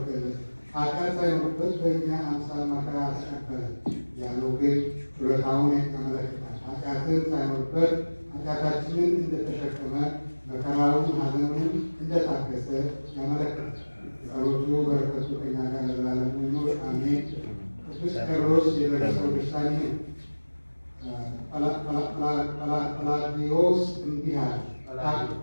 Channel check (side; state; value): both; inverted; correlation -1.00